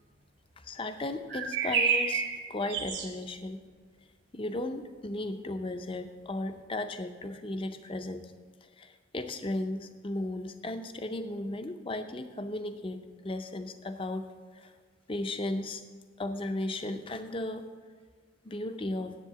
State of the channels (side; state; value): both; normal; correlation 0.39